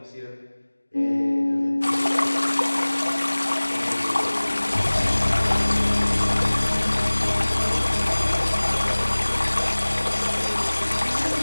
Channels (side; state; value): both; inverted; correlation -1.00